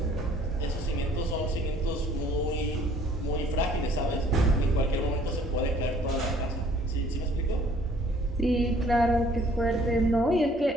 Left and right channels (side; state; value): both; normal; correlation 0.58